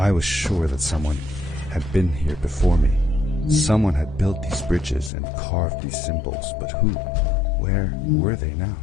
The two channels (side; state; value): right; drops out; at 5.1 s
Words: was sure that someone had been here before me. Someone had built these bridges and carved these symbols, but who? Where were they now?